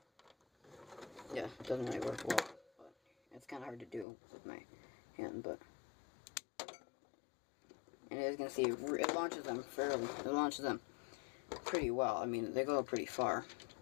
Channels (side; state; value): right; drops out; at 4.0 s